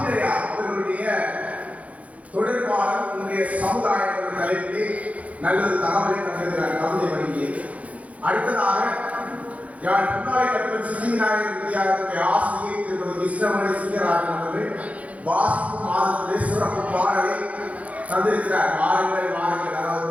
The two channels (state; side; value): late; left; 0.067 ms